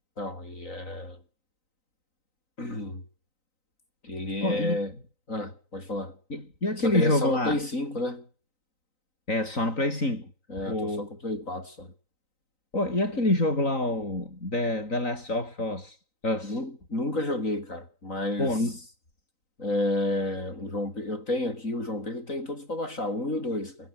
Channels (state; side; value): late; right; 3.9 ms